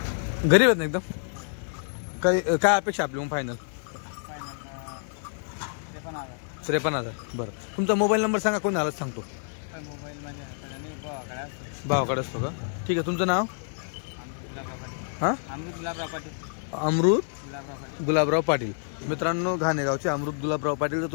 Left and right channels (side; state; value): right; silent; digital silence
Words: गरीब आहेत ना एकदम. काय अपेक्षा आपली मग फायनल? 53,000. बरं तुमचा मोबाईल नंबर सांगा, कोण आलाच सांगतो. भावाकडे असतो का? ठीक आहे. तुमचं नाव? हां अमृत गुलाबराव पाटील. मित्रांनो घाणेगावचे अमृत गुलाबराव पाटील. जर